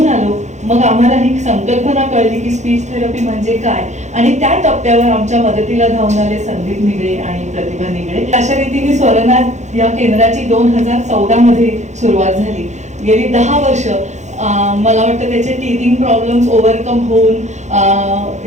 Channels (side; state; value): left; late; 0.34 ms